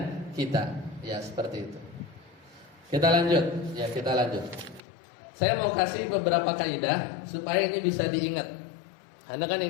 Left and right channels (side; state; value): right; drops out; at 4.8 s